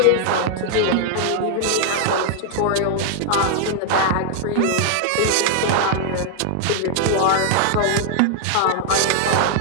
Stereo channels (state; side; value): different; both; correlation 0.00